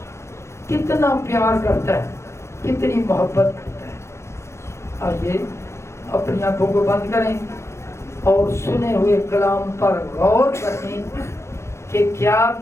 کتنا پیار کرتا ہے, کتنی محبت کرتا ہے. آئیے اپنی آنکھوں کو بند کریں اور سنے ہوئے کلام پر غور کریں کہ کیا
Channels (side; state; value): right; late; 0.13 ms